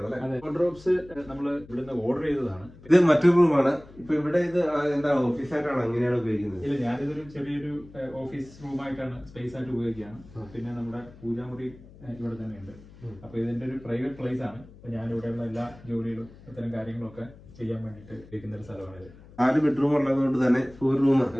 അല്ലെ? വാർഡ്രോബ്സ് നമ്മൾ ഇവിടുന്ന് ഓർഡർ ചെയ്തതാണ്. ഇത് മറ്റൊരു റൂമാണ്. ഇപ്പൊ ഇവിടെ ഇത് എന്താ ഓഫീസായിട്ടാണോ എങ്ങനെയാണ് ഉപയോഗിക്കുന്നത്? ഇല്ല, ഞാനിതൊരു ചെറിയൊരു ഓഫീസ് റൂമായിട്ടാണ് സ്പേസ് ആയിട്ട് ഉപയോഗിക്കുകയാണ്. പിന്നെ നമ്മുടെ പൂജാമുറി ഇവിടെ തന്നെയുണ്ട്. അപ്പൊ ഇതിന്റെ ഒരു പ്രൈവറ്റ് പ്ലേസ് ആണ്. ഞാൻ ഇവിടെയുള്ള എല്ലാ ജോലികളും ഇത്തരം കാര്യങ്ങളൊക്കെ ചെയ്യാൻ വേണ്ടിയിട്ട് ഉപയോഗിക്കുന്ന ഒരു സ്ഥലമാണിത്. 4 ബെഡ്റൂം ഉള്ളതുകൊണ്ട് തന്നെ ഒരു റൂം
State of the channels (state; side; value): noise; left; hum, 21 dB below the sound